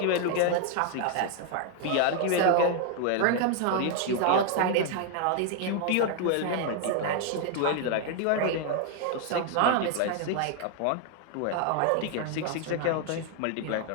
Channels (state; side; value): different; both; correlation 0.00